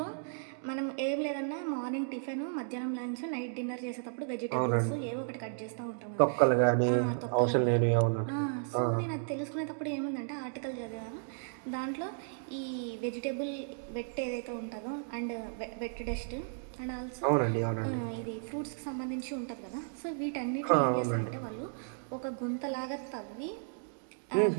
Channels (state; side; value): silent; left; digital silence